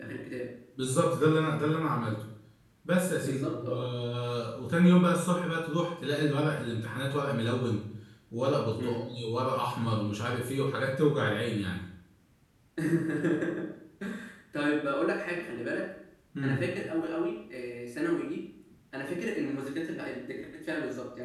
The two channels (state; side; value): identical; both; correlation 1.00